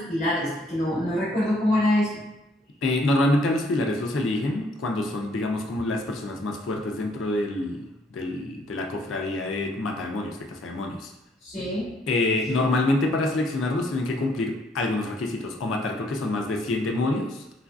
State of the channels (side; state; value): both; normal; correlation 0.66